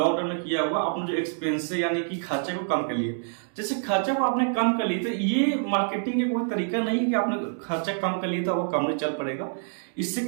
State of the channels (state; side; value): silent; left; digital silence